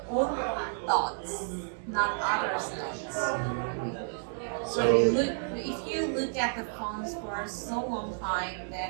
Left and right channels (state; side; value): silent; left; digital silence